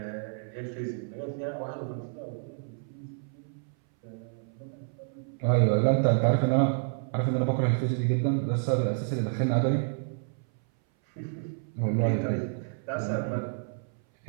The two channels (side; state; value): left; silent; 58 dB below the other